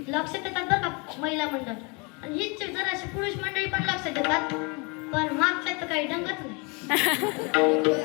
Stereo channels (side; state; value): right; quieter; 30.6 dB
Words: लक्ष देतात बरं का महिला मंडळ. आणि हीच जराशी पुरुष मंडळी पण लक्ष देतात, पण मागच्या तर काही ढंगच नाही.